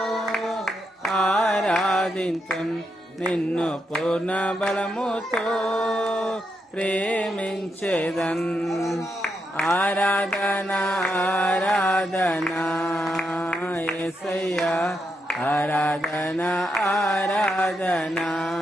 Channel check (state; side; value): normal; both; correlation 0.82